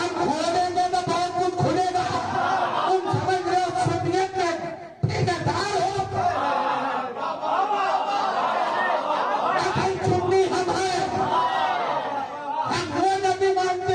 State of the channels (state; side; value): identical; both; correlation 1.00